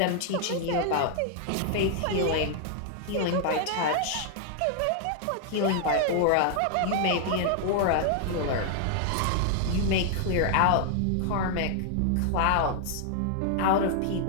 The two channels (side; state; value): both; different; correlation 0.00